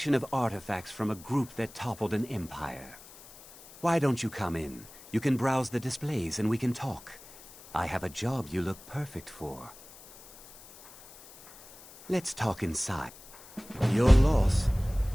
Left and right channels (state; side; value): noise; left; hiss, 20 dB below the sound